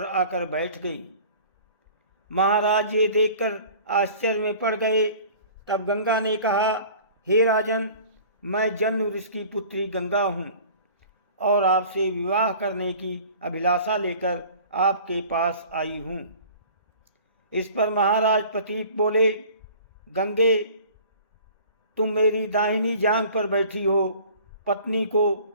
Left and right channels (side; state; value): both; inverted; correlation -0.46